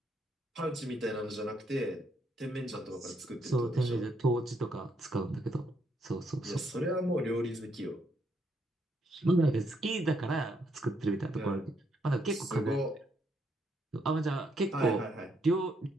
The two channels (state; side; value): normal; both; correlation 0.74